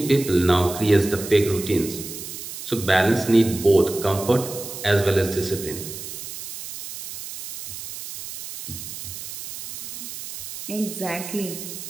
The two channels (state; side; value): noise; right; hiss, 10 dB below the sound